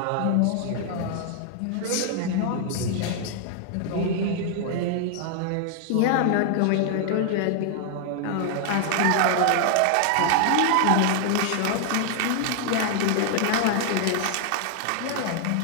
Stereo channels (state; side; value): different; both; correlation 0.00